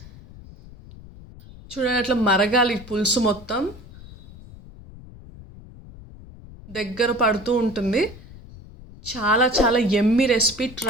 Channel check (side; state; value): left; noise; rumble, 19 dB below the sound